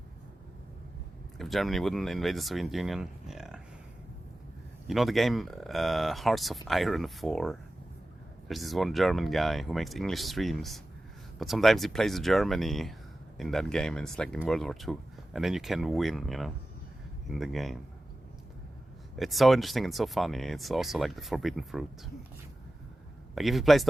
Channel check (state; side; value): normal; both; correlation 0.95